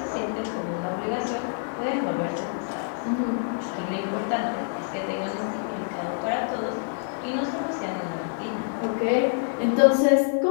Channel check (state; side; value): silent; right; digital silence